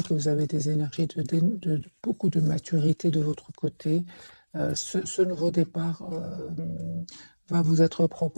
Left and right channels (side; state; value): both; inverted; correlation -1.00